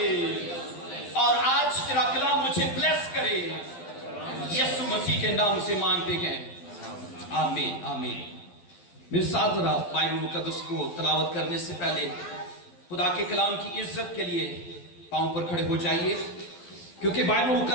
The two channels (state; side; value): late; right; 12 ms